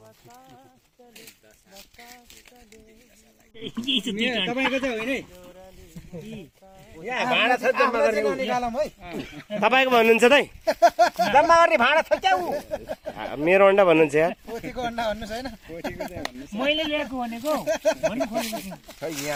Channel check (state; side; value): identical; both; correlation 1.00